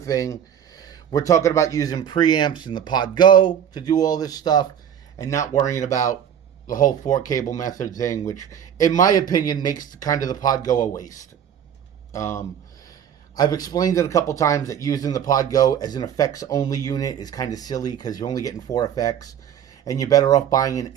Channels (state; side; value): quieter; left; 9.1 dB